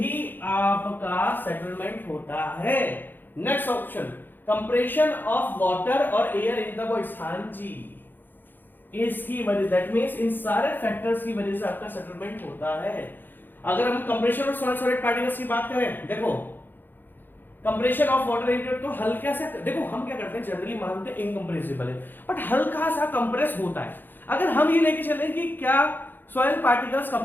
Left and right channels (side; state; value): right; late; 0.092 ms